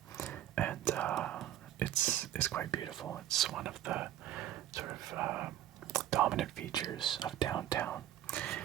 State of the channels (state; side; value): quieter; left; 12.3 dB